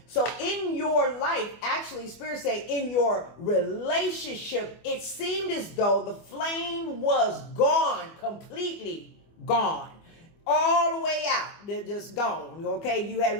So in your life, actually, Spirit say in your relationship, it seemed as though the flame was gone, completely gone. All the way out. They're just gone. Okay, you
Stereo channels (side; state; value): right; late; 24 ms